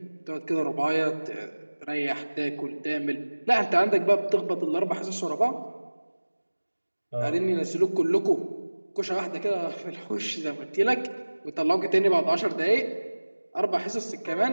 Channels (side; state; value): both; inverted; correlation -1.00